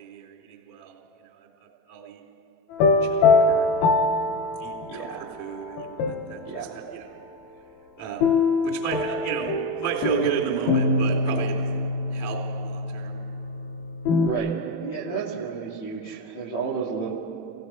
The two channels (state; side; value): late; right; 18 ms